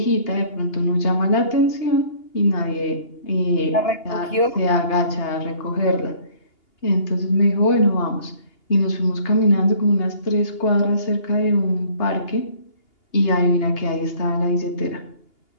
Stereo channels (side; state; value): right; late; 2.8 ms